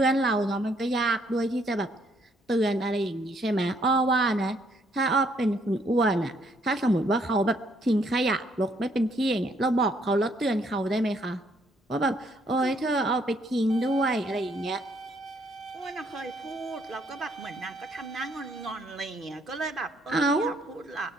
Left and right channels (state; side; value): normal; both; correlation 0.68